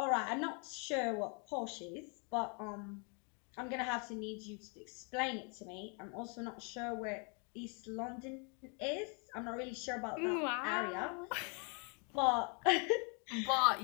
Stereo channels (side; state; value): right; quieter; 36.8 dB